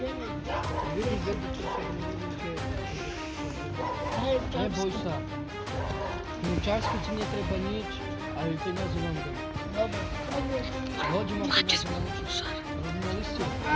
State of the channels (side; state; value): both; identical; correlation 1.00